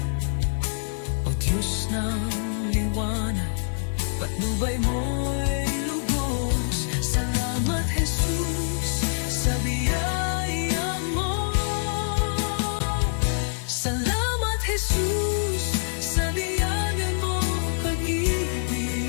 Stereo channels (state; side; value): silent; right; 61 dB below the other